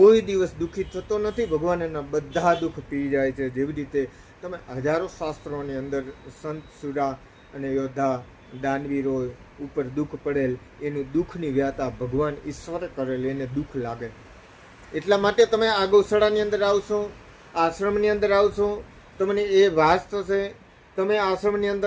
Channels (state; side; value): identical; both; correlation 1.00